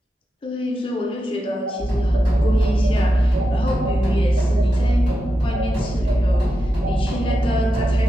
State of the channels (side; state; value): both; normal; correlation 0.88